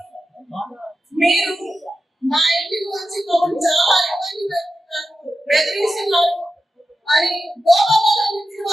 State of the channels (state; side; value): normal; both; correlation 0.91